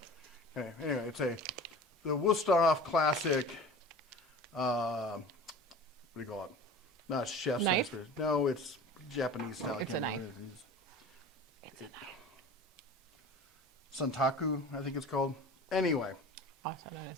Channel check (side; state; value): both; normal; correlation 0.38